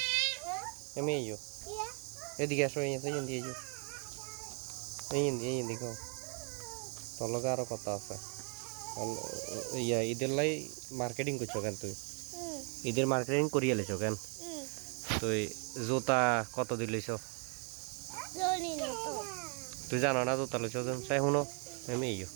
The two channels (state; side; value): quieter; left; 40.0 dB